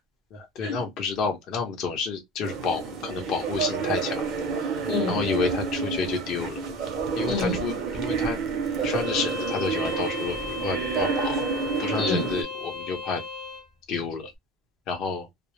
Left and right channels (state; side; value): normal; both; correlation 0.34